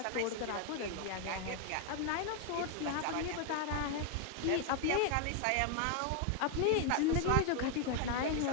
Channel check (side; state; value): both; different; correlation 0.01